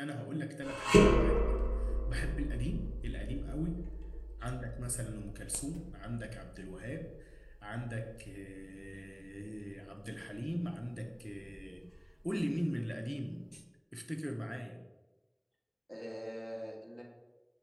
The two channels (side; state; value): both; identical; correlation 1.00